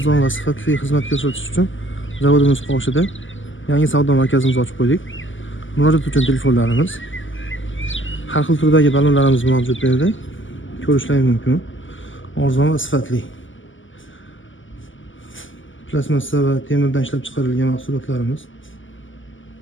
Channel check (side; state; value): right; late; 0.57 ms